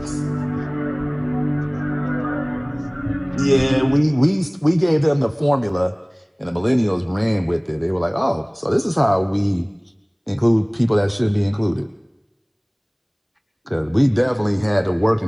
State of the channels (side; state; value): both; identical; correlation 1.00